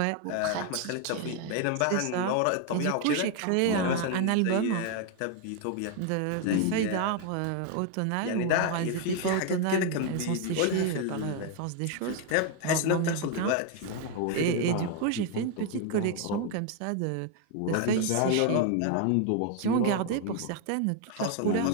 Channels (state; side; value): different; both; correlation 0.01